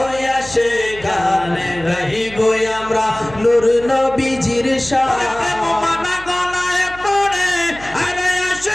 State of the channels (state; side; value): noise; right; hum, 17 dB below the sound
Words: আসে গান গাইব আমরা নূর নবীজির শান।